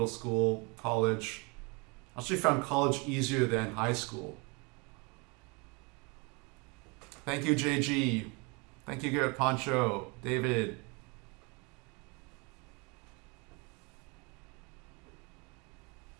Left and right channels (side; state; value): left; quieter; 30.1 dB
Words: school, college. I actually found college easier than high school. Thank you, JG. Thank you, Garrett Poncho, David.